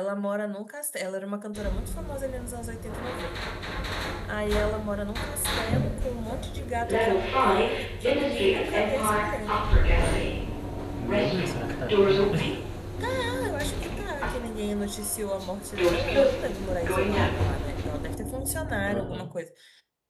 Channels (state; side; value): identical; both; correlation 1.00